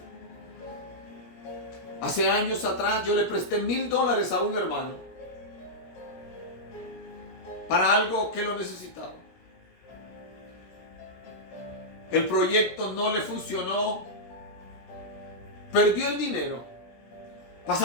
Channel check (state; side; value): late; right; 17 ms